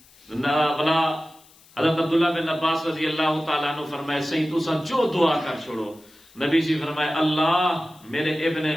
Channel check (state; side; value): noise; left; hiss, 27 dB below the sound